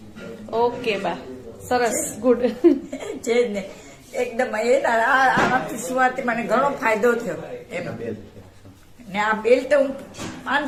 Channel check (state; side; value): identical; both; correlation 1.00